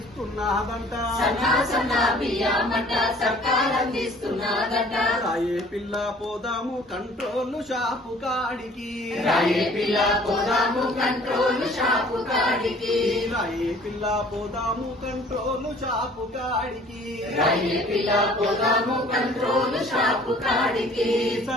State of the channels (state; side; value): normal; both; correlation 0.53